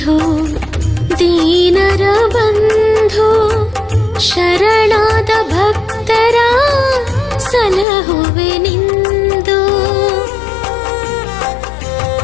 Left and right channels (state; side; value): drops out; right; at 7.9 s